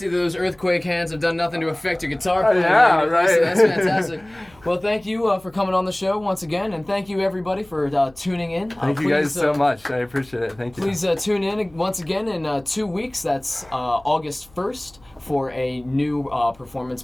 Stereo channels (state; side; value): noise; left; hum, 28 dB below the sound